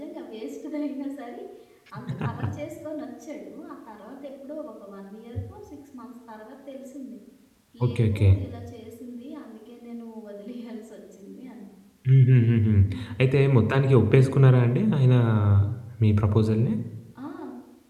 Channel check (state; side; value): identical; both; correlation 1.00